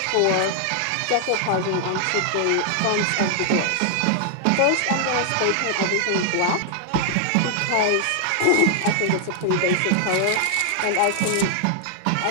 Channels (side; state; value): both; different; correlation 0.00